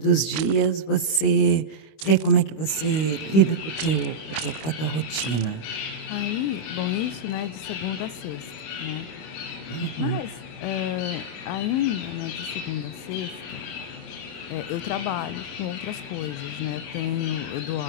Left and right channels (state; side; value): late; right; 25 ms